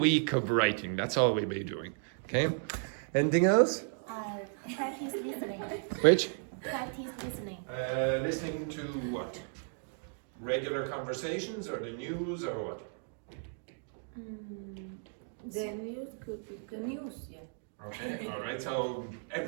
of writing, that's all we'll be doing, okay? Anything else? Practice listening. Which? Practice listening. Listening to what? Regular conversations or the news or what? The news could be the news, yeah. Okay, all right, so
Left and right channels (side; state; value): left; silent; 55 dB below the other